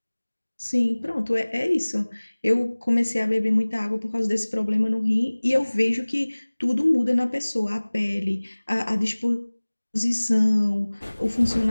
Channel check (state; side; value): inverted; both; correlation -1.00